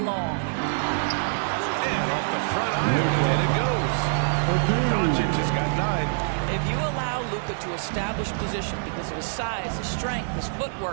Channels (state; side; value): silent; left; digital silence